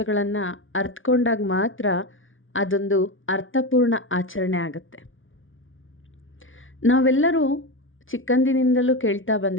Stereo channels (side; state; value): right; late; 0.57 ms